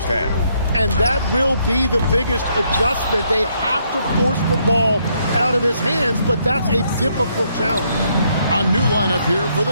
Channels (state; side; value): inverted; both; correlation -0.73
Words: half. And that will be the biggest adjustment. They have to force the ball out of his hands, but that's a difficult challenge. A new lineup here for the